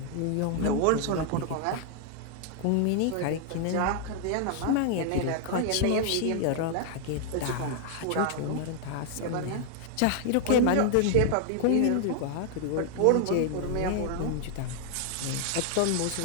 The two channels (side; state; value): both; different; correlation 0.00